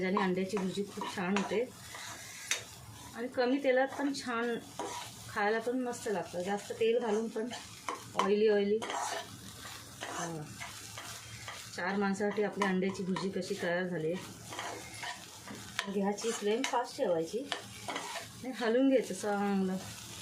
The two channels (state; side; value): identical; both; correlation 1.00